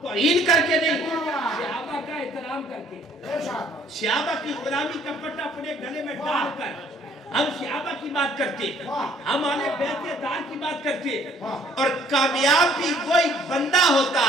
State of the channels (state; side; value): normal; both; correlation 0.60